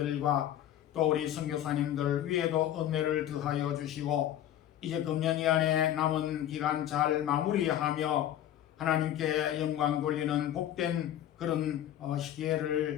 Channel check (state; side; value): quieter; right; 11.6 dB